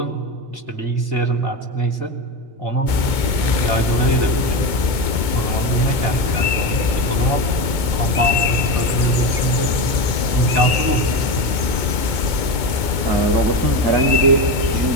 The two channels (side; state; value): left; late; 2.2 ms